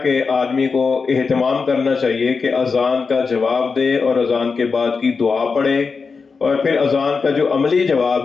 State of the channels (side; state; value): right; quieter; 4.9 dB